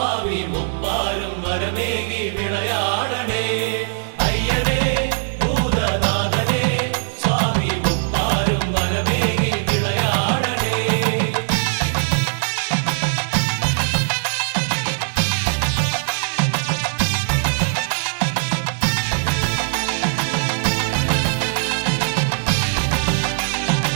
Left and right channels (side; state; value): left; silent; digital silence